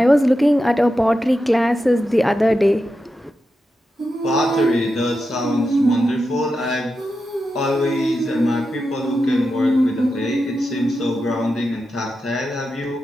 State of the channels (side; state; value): both; normal; correlation 0.89